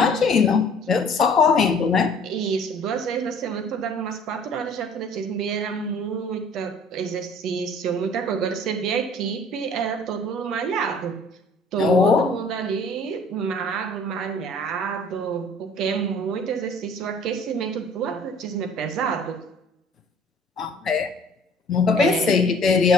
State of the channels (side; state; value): both; normal; correlation 0.52